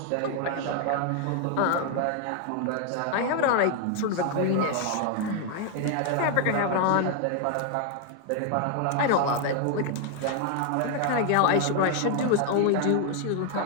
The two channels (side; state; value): both; different; correlation 0.00